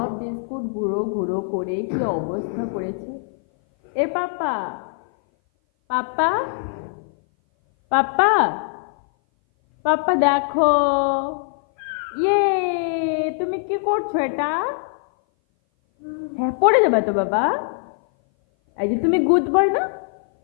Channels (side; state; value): right; silent; 58 dB below the other